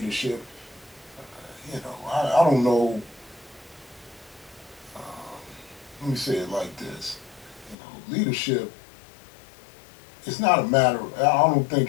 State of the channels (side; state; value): right; drops out; at 7.8 s